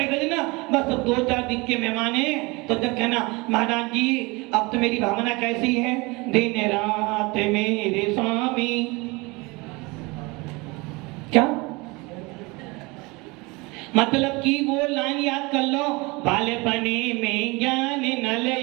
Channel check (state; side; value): quieter; left; 25.3 dB